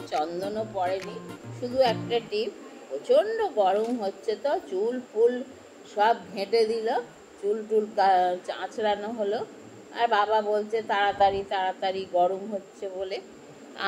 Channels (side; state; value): both; identical; correlation 1.00